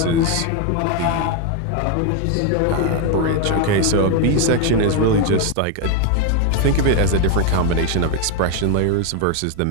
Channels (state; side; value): different; both; correlation 0.01